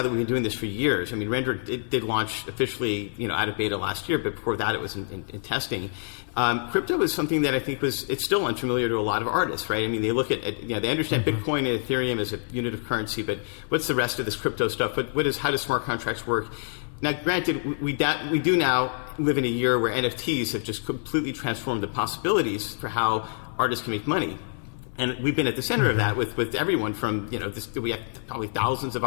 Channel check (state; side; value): silent; right; 61 dB below the other